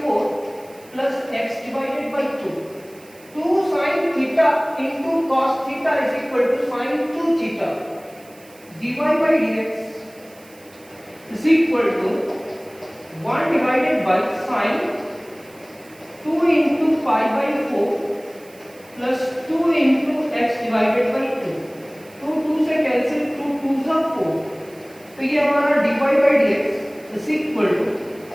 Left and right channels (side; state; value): right; noise; hiss, 25 dB below the sound